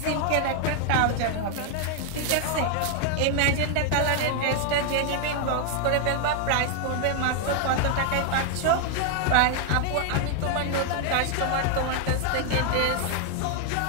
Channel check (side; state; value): both; different; correlation 0.00